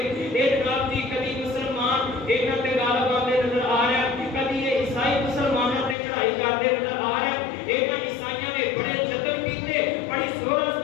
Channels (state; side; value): drops out; right; at 6.0 s